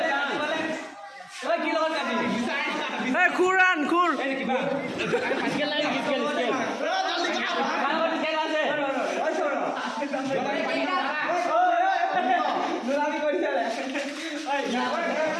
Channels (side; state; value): both; identical; correlation 1.00